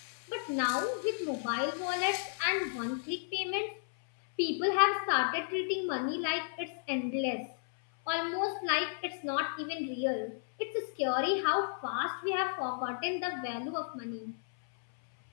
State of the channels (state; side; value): silent; right; 56 dB below the other